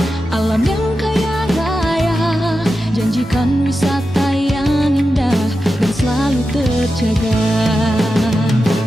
alam yang kaya raya, janjikan wisata yang indah dan selalu terjaga.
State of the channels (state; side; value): normal; both; correlation 0.91